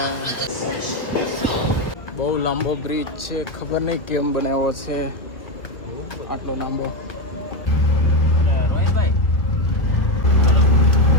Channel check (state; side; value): late; right; 1.4 ms